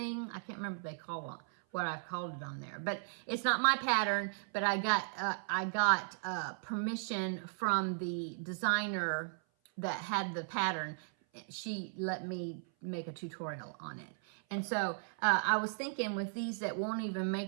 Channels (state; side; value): silent; left; 53 dB below the other